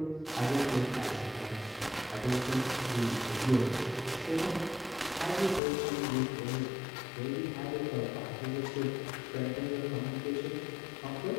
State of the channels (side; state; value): right; drops out; at 5.6 s